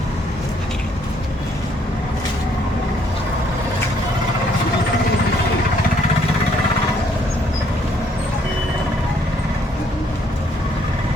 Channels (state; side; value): normal; both; correlation 0.67